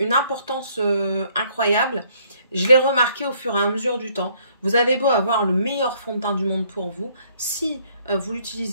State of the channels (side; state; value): both; inverted; correlation -0.65